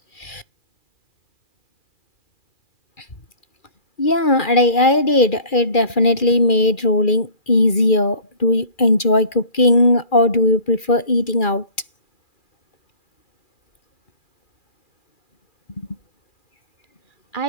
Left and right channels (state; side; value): late; right; 2.4 ms